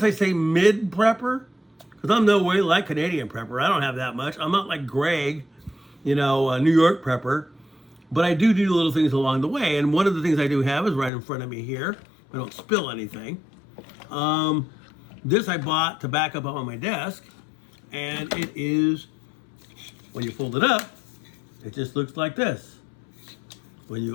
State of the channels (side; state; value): right; drops out; at 11.1 s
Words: I say mid-prepper, because I'm no way like Canadian prepper. I don't have that much. I'm not like Greg, you know, a New York prepper. But I do little things along the way. And one of the things I do have is right in front of me here. I don't spill anything. This I bought to back up on my desk. And it is, when you fold it up, it just looks like this. When